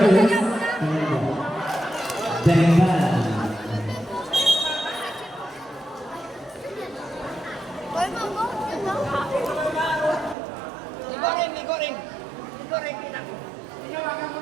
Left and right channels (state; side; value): drops out; left; at 10.4 s